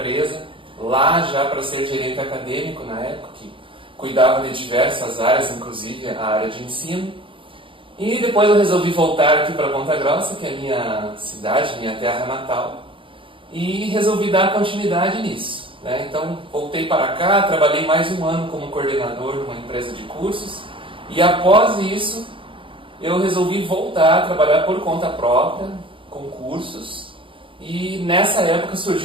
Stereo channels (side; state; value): left; late; 0.25 ms